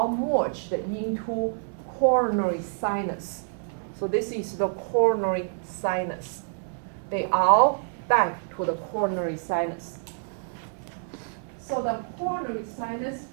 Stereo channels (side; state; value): left; silent; 60 dB below the other